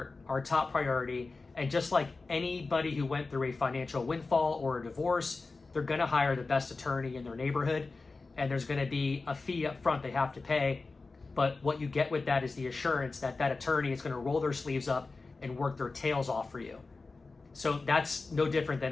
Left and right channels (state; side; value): quieter; right; 3.8 dB